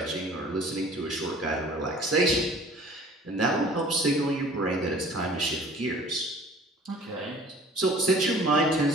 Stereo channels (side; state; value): both; normal; correlation 0.49